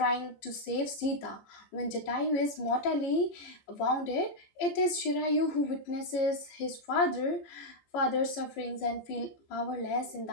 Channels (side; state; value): right; late; 14 ms